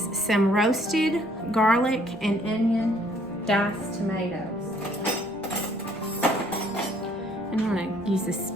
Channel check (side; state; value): left; noise; rumble, 28 dB below the sound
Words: some roasted garlic and onion diced tomatoes. And I'm going to use a